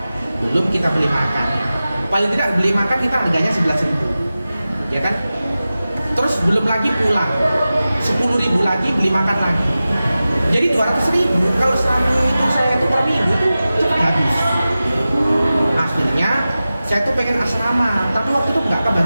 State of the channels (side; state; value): both; inverted; correlation -0.95